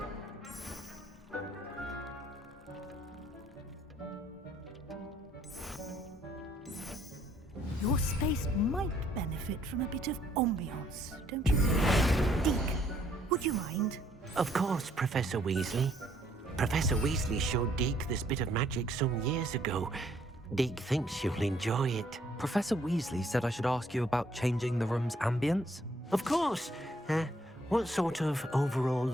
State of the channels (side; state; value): both; normal; correlation 0.66